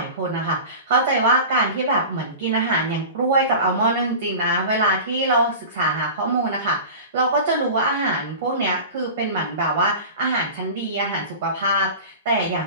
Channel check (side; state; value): both; inverted; correlation -0.34